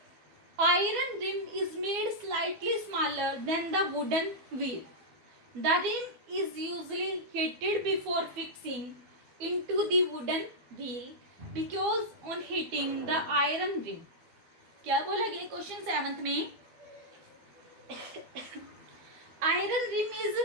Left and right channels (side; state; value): left; late; 12 ms